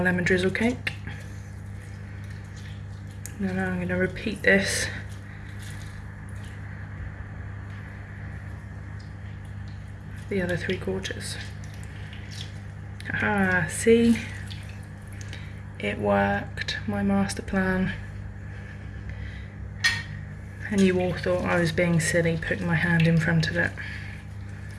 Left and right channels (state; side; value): identical; both; correlation 1.00